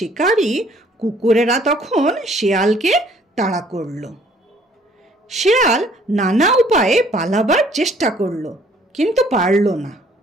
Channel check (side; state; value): both; normal; correlation 0.59